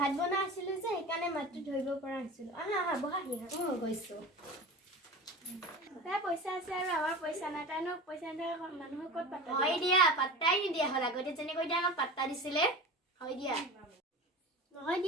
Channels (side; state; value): both; normal; correlation 0.33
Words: বনাই আছিলো যে সেইকাৰণে মাতটো ধৰিব পৰা নাছিলো আহা বহাহি গৈছো তাই পইচা আছে আৰু আমাৰ পইচা নাই তাইনো পইচা নিদিয়া মানুহক ক'ত পাত্তা হয় দিয়া পাত্তাই নিদিয়া হ'ল আগতে যেনেকৈ দিয়া আমাক পাত্তা দিছিলে হয় দিয়া নহয়